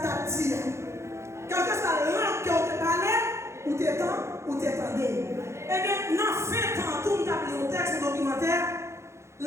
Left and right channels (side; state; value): left; late; 0.13 ms